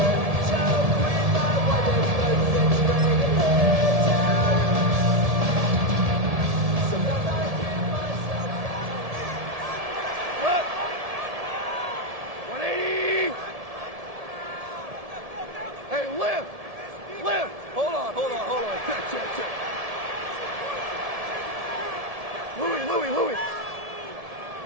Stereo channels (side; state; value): left; late; 1.7 ms